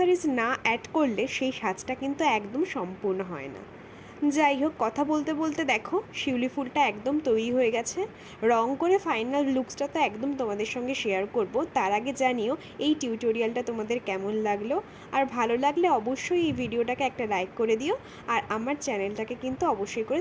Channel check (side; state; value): both; identical; correlation 1.00